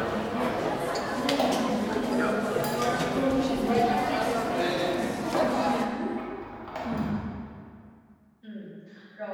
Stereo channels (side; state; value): both; identical; correlation 1.00